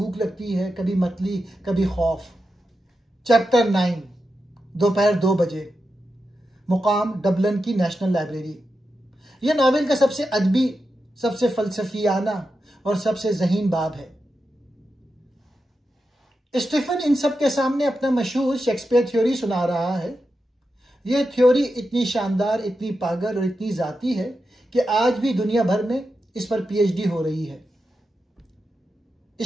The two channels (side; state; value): both; normal; correlation 0.89